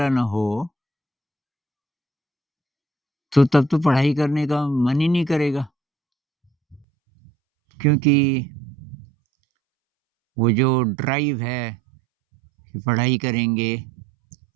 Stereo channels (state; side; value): drops out; left; at 6.9 s